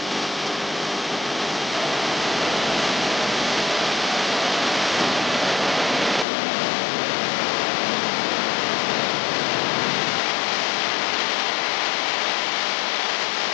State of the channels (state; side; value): drops out; right; at 6.2 s